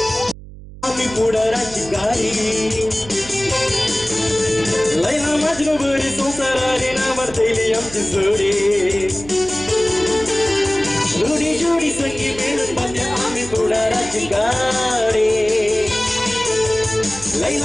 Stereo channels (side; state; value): right; noise; hum, 16 dB below the sound